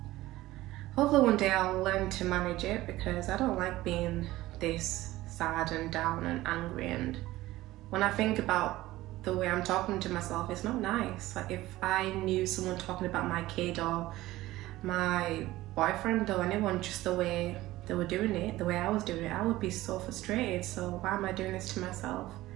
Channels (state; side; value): quieter; left; 17.0 dB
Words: Hopefully one day I'll learn to manage it, because I don't like being this sad and down and angry. And when I think about the way I'm talking to myself, it's not nice. Like if I knew someone talking about my kid or my boyfriend or anyone just the way they were doing it, the way I was doing it, I would be so frustrated. So why am I doing this to myself?